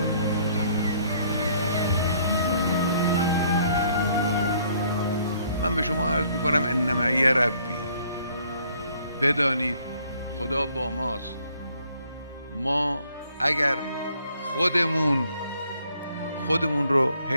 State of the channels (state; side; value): inverted; both; correlation -0.64